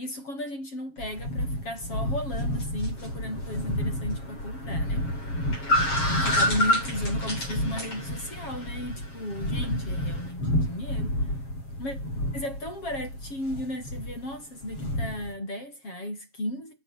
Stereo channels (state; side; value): late; right; 7.3 ms